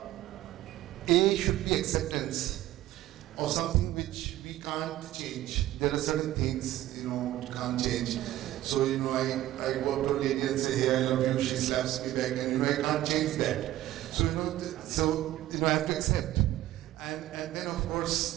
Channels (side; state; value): left; quieter; 14.5 dB